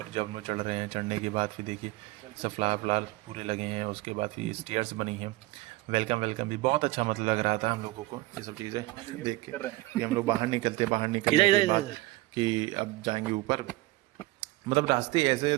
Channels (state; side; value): quieter; left; 19.4 dB